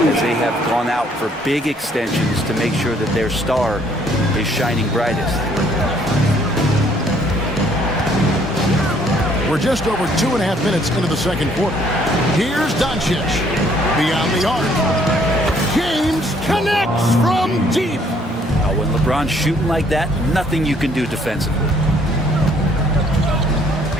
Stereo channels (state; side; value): normal; both; correlation 0.63